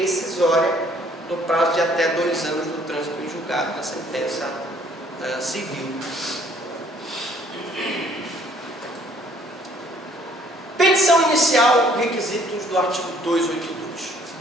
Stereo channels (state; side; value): normal; both; correlation 0.61